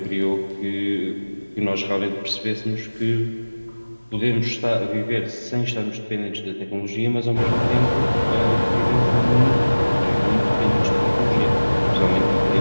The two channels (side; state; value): both; inverted; correlation -1.00